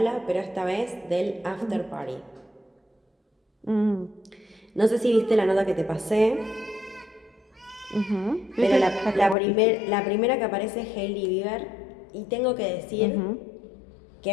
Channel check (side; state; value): right; drops out; at 9.3 s